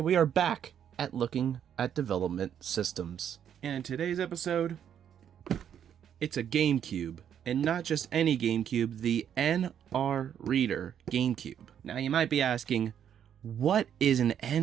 are back at looking at development systems. And in today's episode, it's a GameCube, and not just any GameCube, the NR Reader GameCube. Now you might be asking, what is an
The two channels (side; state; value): left; quieter; 9.1 dB